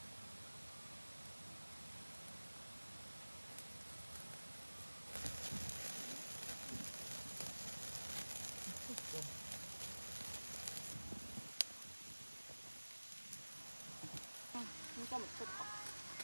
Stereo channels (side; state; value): both; inverted; correlation -1.00